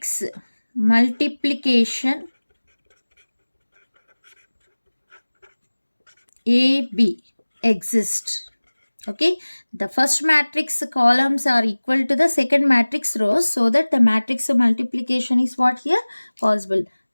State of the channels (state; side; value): inverted; both; correlation -1.00